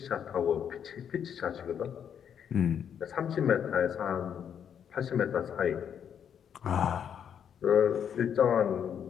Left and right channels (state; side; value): quieter; right; 8.4 dB